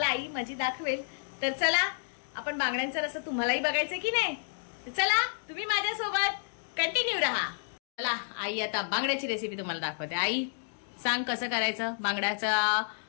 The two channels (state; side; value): silent; right; digital silence